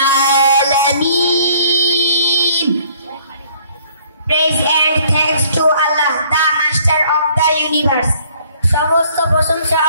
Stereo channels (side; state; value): both; inverted; correlation -0.59